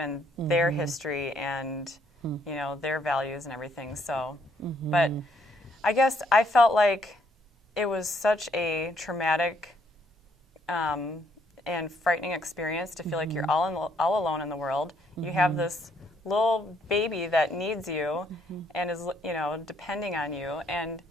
their history and, you know, their values and everything. So, but I guess I felt like it was such a traumatic and frightening experience to feel like you're all alone in the world. You have this little baby that needs you and is, you know, depending on you. And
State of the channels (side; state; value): both; normal; correlation 0.70